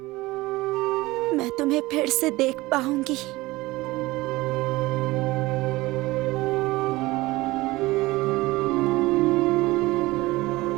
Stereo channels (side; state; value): left; quieter; 20.0 dB